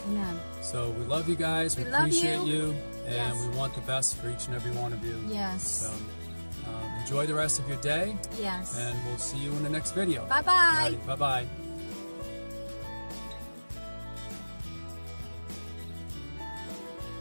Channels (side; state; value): both; inverted; correlation -1.00